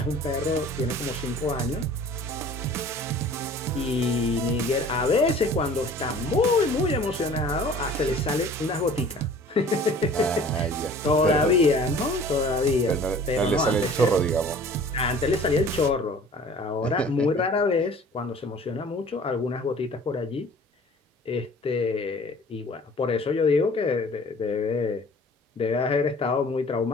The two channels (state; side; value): normal; both; correlation 0.47